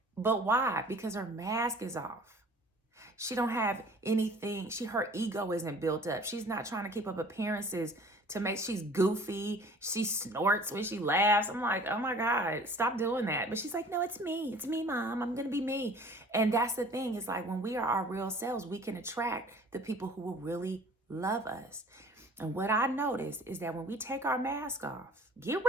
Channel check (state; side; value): normal; both; correlation 0.48